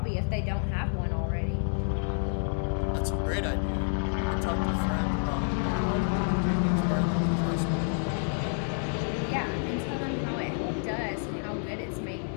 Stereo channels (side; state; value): right; silent; digital silence